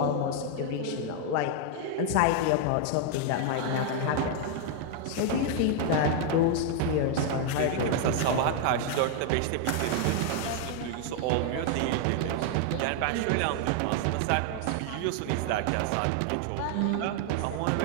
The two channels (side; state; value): both; different; correlation 0.00